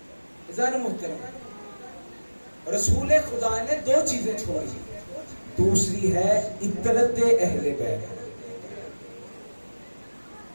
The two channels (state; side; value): inverted; both; correlation -1.00